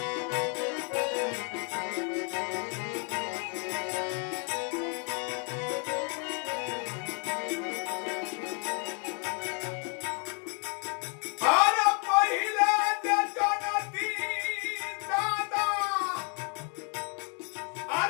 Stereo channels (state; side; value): quieter; right; 38.0 dB